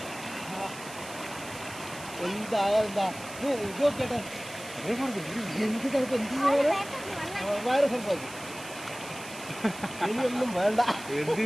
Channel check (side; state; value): right; noise; hiss, 15 dB below the sound